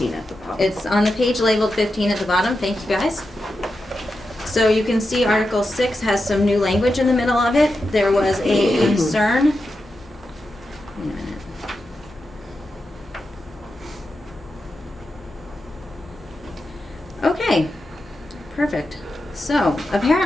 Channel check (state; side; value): normal; both; correlation 0.89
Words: at the bottom. it's on the page labeled 15 at the bottom. Thank you, guys. So you can see Article 6 has some new language in the middle of it. There was a concern. Wait a minute. Okay, perfect. So